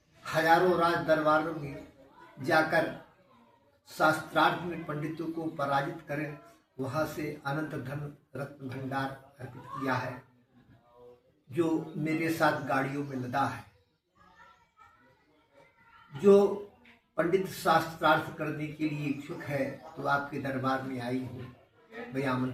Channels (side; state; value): both; identical; correlation 1.00